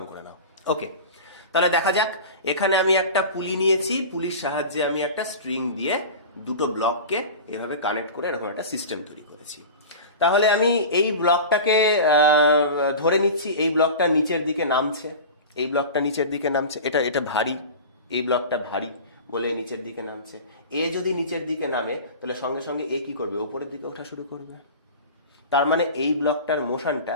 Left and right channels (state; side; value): inverted; both; correlation -0.33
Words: করে নাও। ওকে, তাহলে দেখা যাক। এখানে আমি একটা পুলি নিয়েছি, পুলির সাহায্যে আমি একটা স্ট্রিং দিয়ে দুটো ব্লককে এভাবে কানেক্ট করে এরকম একটা সিস্টেম তৈরি করেছি। তাহলে আমি এই ব্লকটাকে ধরে নিচ্ছি, এই ব্লকটা নিচের দিকে নামছে, এই ব্লকটা নিচের দিকে নামছে, এটা ভারী, এই ব্লকটা ভারী বলে নিচের দিকে নামছে। এ যদি নিচের দিকে নামে, তাহলে সঙ্গে সঙ্গে এ কি করবে? উপরের দিকে ওঠা শুরু করবে। তার মানে এই ব্লকটার মোশনটা